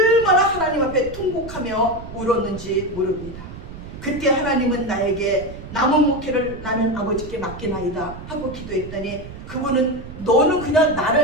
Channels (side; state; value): right; noise; rumble, 13 dB below the sound